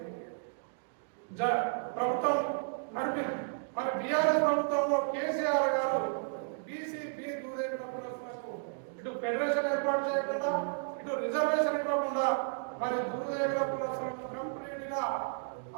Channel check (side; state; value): left; silent; digital silence